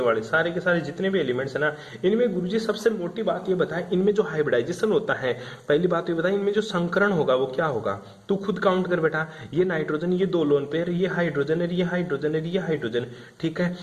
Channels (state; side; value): identical; both; correlation 1.00